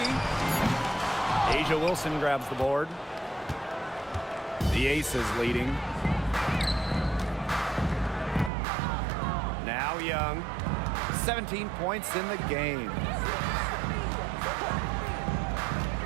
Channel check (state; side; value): drops out; left; at 8.5 s